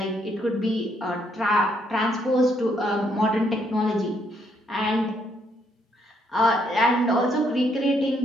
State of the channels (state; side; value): normal; both; correlation 0.72